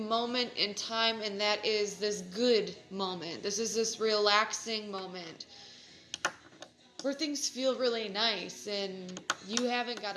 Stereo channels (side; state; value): both; identical; correlation 1.00